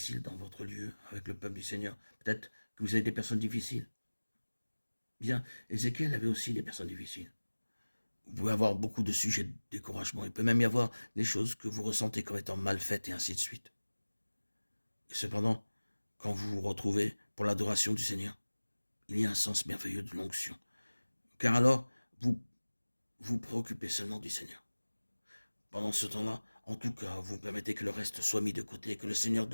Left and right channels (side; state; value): both; inverted; correlation -1.00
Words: dans votre lieu avec le peuple du Seigneur. Peut-être que vous avez des personnes difficiles. Bien, Ézéchiel avait aussi des personnes difficiles. Vous pouvez avoir beaucoup de sujets de découragement. Il peut même y avoir des choses que vous ressentez comme étant mal faites et ainsi de suite. Et cependant, quand vous vous retrouvez pour l'adoration du Seigneur, il y a un sens merveilleux de l'onction. Car alors, vous vous préoccupez seulement du Seigneur. Pendant ce temps-là, en tout cas, vous permettez que le reste soit mis de côté, que le Seigneur